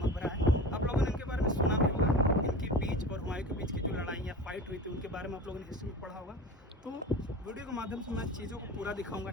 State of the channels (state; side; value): normal; both; correlation 0.33